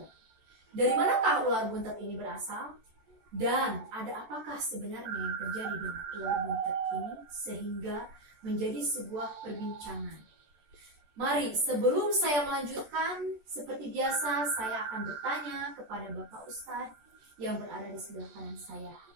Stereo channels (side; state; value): left; late; 14 ms